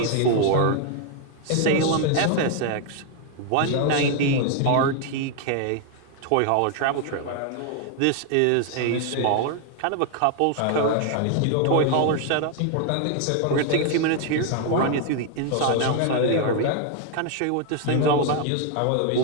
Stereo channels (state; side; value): different; both; correlation 0.00